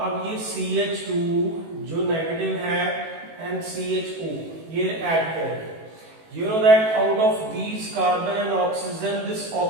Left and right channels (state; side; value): late; left; 18 ms